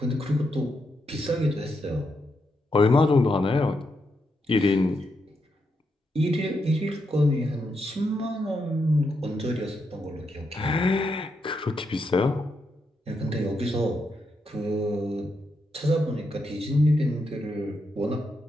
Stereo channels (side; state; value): both; normal; correlation 0.82